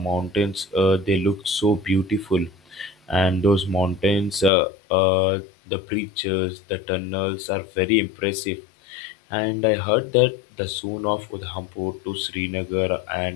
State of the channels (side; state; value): right; drops out; at 4.5 s